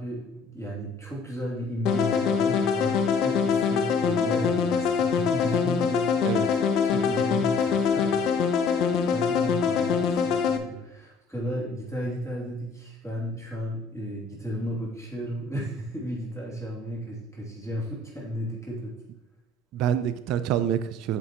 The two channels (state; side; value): quieter; right; 3.6 dB